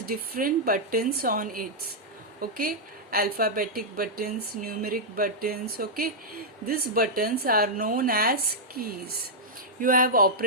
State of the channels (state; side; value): normal; both; correlation -0.07